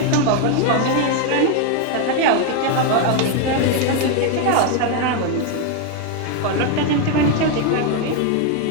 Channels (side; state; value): both; different; correlation 0.01